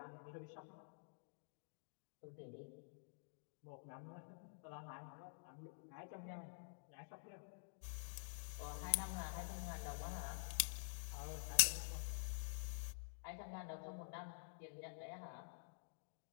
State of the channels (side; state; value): right; silent; digital silence